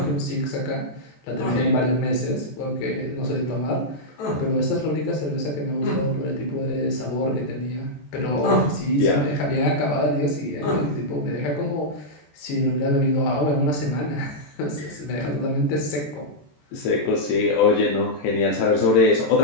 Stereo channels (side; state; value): right; late; 14 ms